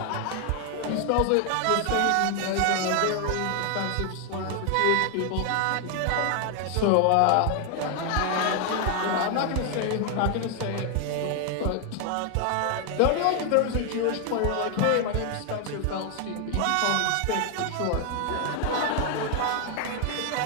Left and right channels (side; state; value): both; different; correlation 0.00